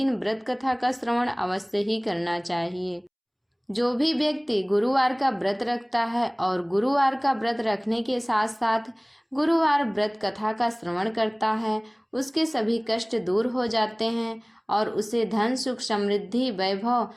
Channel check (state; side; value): identical; both; correlation 1.00